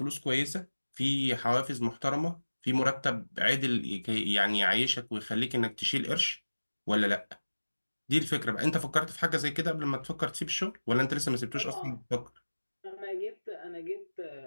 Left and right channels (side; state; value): both; inverted; correlation -1.00